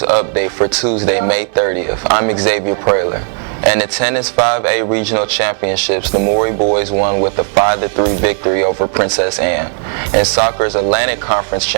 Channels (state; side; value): silent; left; 59 dB below the other